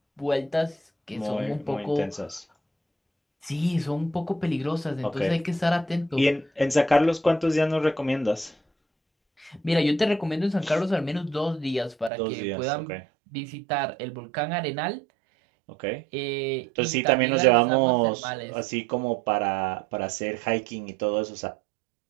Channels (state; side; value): drops out; left; at 12.1 s